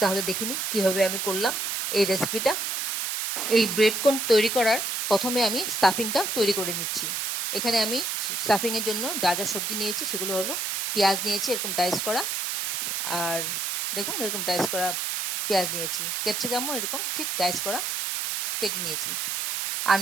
তাহলে দেখিনি কিভাবে আমি করলাম এই রেসিপিটা। এই ব্রেড কোন তৈরি করার প্রথমে আমি স্টাফিংটা তৈরি করে নিচ্ছি। এখানে আমি স্টাফিংয়ের জন্য যা যা সবজি নিয়েছি সেগুলো হলো পেঁয়াজ নিয়েছি এরকম ডাইস করা, আর দেখুন এরকম ডাইস করা পেঁয়াজ নিয়েছি, ক্যাপসিকামও এরকম ঠিক ডাইস করা কেটে নিয়েছি। আর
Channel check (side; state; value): right; noise; hiss, 1 dB below the sound